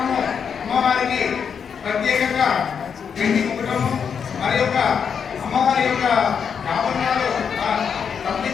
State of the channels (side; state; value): right; quieter; 6.9 dB